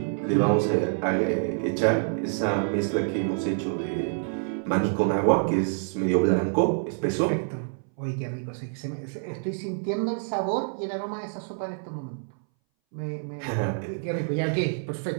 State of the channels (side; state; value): left; silent; 60 dB below the other